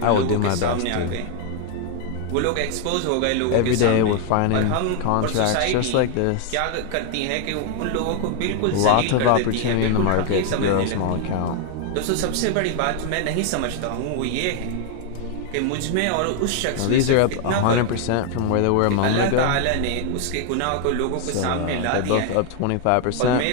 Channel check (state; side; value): different; both; correlation 0.00